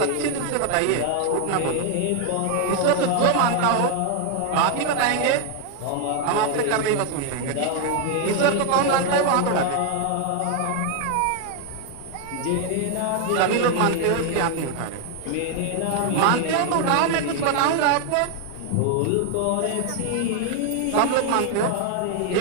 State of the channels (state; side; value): different; both; correlation 0.00